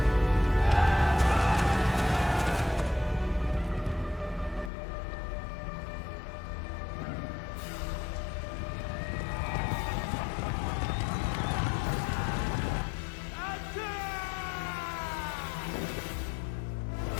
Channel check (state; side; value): drops out; right; at 4.7 s